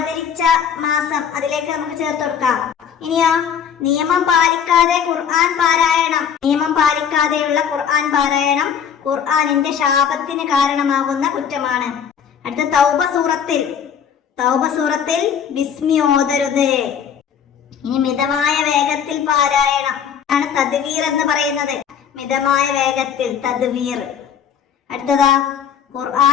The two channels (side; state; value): right; quieter; 8.0 dB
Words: മാസം, അതിലേക്ക് നമുക്ക് ചേർത്ത് കൊടുക്കാം. ഇനിയോ നിയമം പാലിക്കാതെ ഖുർആൻ പാരായണം. നിയമം പാലിക്കാതെയുള്ള ഖുർആൻ പാരായണം ഖുർആനിന്റെ ശാപത്തിന് കാരണമാകുന്ന കുറ്റമാണ്. അടുത്ത തൗബ സൂറത്തിൽ ബിസ്മി ഓതരുത്. ഇനി മിതമായ വേഗത്തിൽ പാരായണം ആണ് തദ്വീർ എന്ന് പറയുന്നത്. മിതമായ വേഗത്തിൽ തദ്വീർ. അടുത്തതാ